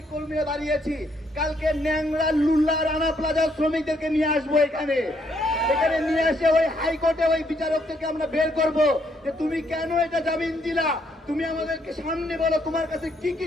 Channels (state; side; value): normal; both; correlation 0.72